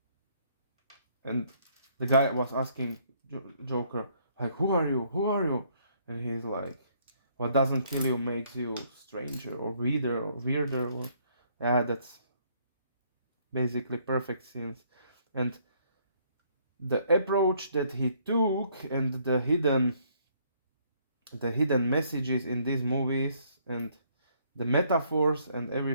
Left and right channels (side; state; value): both; inverted; correlation -0.66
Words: and the guy was asking Joker, like, who are you? Who are you? And he's like, what doesn't kill you makes you stranger or weirder or yeah, that's basically perfect scenes. And the approach that he took, and the hidden messages in these movies, and the metaphors and